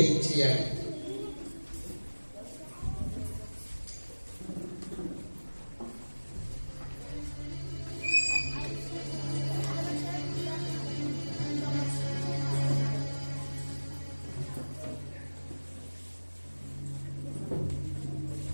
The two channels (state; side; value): inverted; both; correlation -1.00